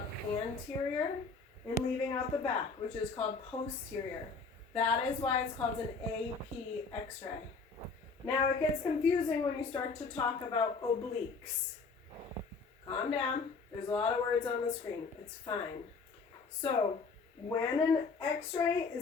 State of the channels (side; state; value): right; quieter; 4.6 dB